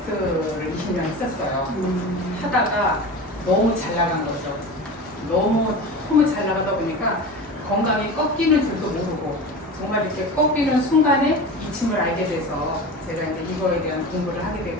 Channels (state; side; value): normal; both; correlation 0.31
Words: 20년 했었어요. 하다가 너무 잘 나간 거죠. 너무 잘 나가다 보니까 건강이 꺾이는 줄도 모르고 정말 이렇게 꺾이는 순간에 이침을 알게 돼서 제가 이제 이거에 대한 공부를 하게